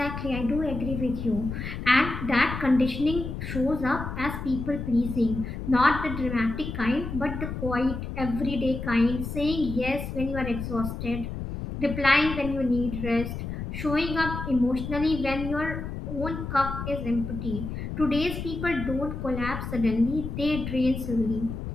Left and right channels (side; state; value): left; noise; rumble, 6 dB below the sound